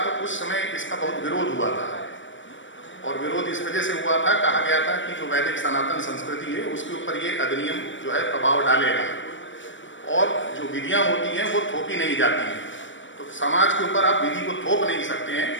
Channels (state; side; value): late; right; 0.55 ms